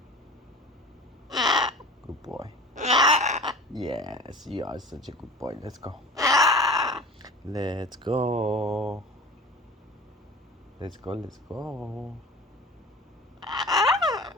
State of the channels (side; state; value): both; normal; correlation 0.40